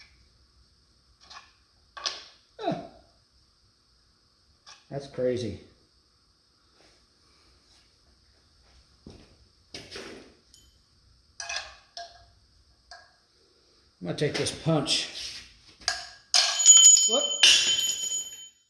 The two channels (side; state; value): both; identical; correlation 1.00